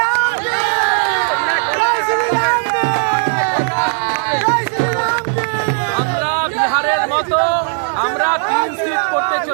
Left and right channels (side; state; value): left; silent; digital silence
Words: আমরা বিহারের মতো আমরা ক্লিন সুইপ করতে